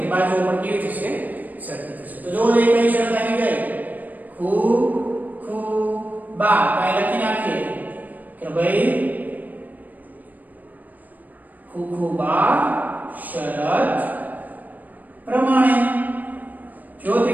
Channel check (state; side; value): late; left; 0.082 ms